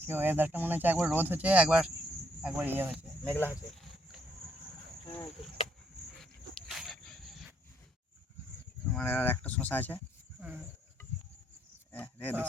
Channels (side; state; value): both; normal; correlation 0.70